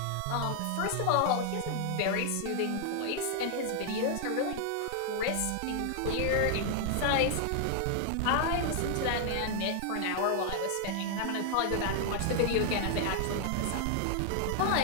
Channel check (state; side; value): different; both; correlation 0.00